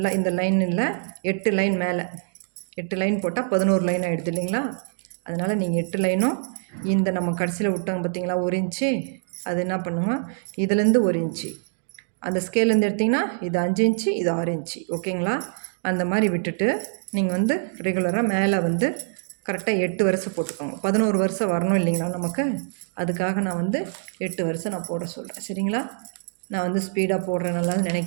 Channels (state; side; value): silent; left; digital silence